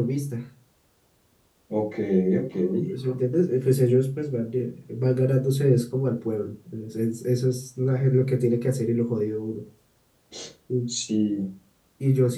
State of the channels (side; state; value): both; identical; correlation 1.00